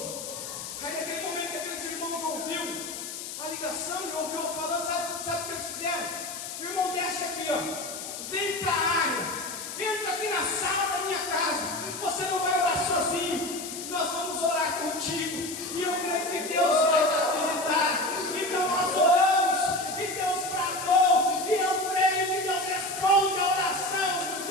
Aí naquele momento que aqueles irmãos ouviram a ligação e ouviu eu falando, sabe o que eles fizeram? O irmão desce aqui, ó, vem para a área, entra aqui na sala da minha casa, você não vai orar sozinho, nós vamos orar contigo, e eu creio que Deus vai te visitar. Então nós oramos, e Deus bradou, e eu creio que Deus responde a oração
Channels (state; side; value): noise; left; hiss, 8 dB below the sound